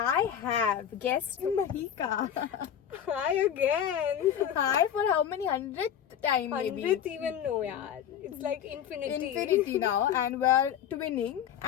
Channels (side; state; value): right; quieter; 9.4 dB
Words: have guest Mahika. Hi again. Hi for how many hundredth time maybe? 100th even no, yaar. It's like infinity. Infinity now, and we're twinning.